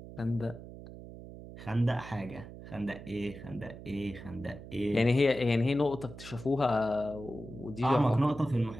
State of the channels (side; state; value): right; noise; hum, 14 dB below the sound